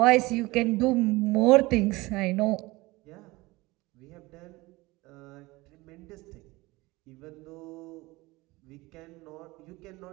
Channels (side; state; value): left; quieter; 21.4 dB